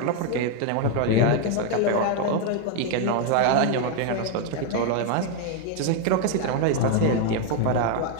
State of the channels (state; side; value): different; both; correlation 0.01